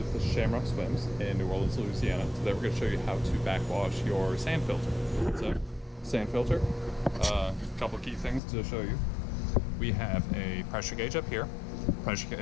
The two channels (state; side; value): drops out; right; at 8.4 s